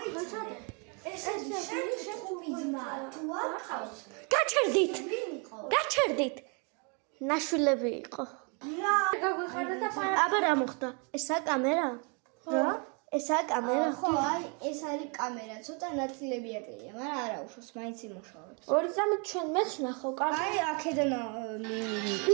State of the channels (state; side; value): quieter; left; 35.1 dB